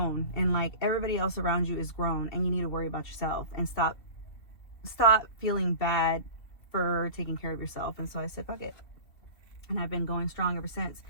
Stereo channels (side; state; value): right; late; 2.7 ms